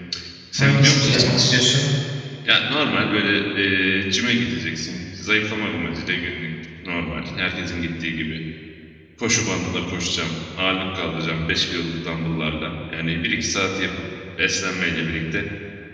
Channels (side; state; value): both; identical; correlation 1.00